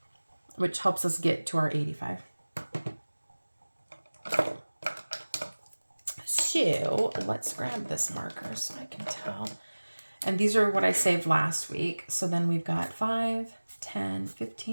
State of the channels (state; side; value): inverted; both; correlation -1.00